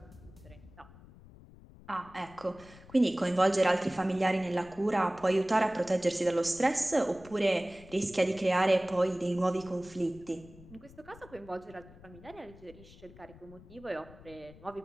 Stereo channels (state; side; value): noise; left; rumble, 21 dB below the sound